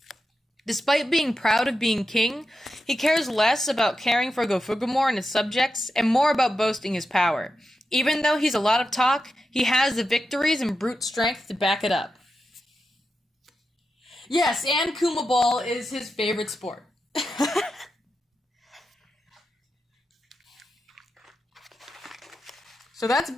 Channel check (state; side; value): normal; both; correlation 0.89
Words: Despite being proud of being king, he cares less about caring for Gofugumor and his subjects and more about boasting his power. Even though he's a lot of talk, he has the victories and brute strength to back it up. Yes, and Kuma Ball is his favorite sport. So that's